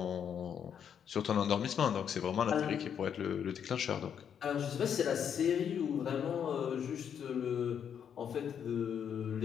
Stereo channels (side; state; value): right; quieter; 8.2 dB